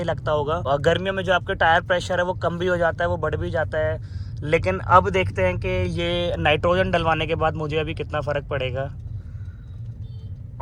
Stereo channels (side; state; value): both; identical; correlation 1.00